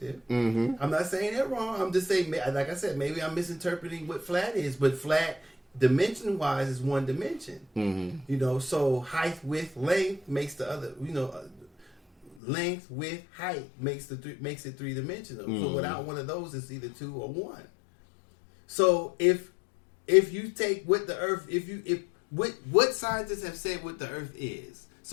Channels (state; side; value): drops out; right; at 12.4 s